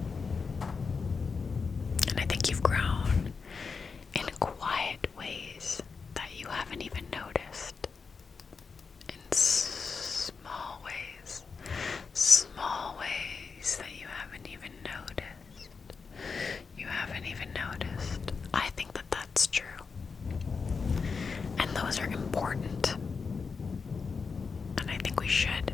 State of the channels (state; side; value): quieter; right; 5.1 dB